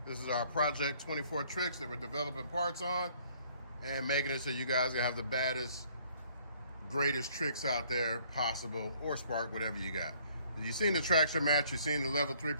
This is our Project 24 Trixx that we're developing parts on and making it so you guys can have the baddest, greatest Trixx out there possible, or Spark, whatever you got. You've seen the traction mats, you've seen the level 3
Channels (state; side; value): inverted; both; correlation -0.60